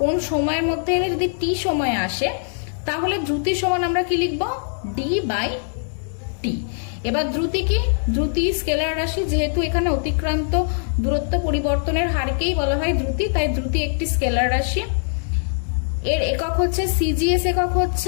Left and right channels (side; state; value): right; silent; digital silence